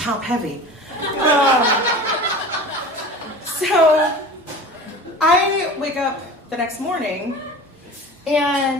heavy. So I wake up the next morning,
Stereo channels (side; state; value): both; normal; correlation 0.37